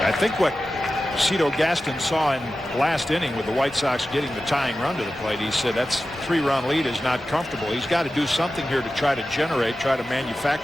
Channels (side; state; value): both; normal; correlation 0.94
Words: I think what Cito Gaston saw in last inning with the White Sox getting the tying run to the plate, he said that's 3-run lead is not comfortable. He's got to do something here to try to generate, try to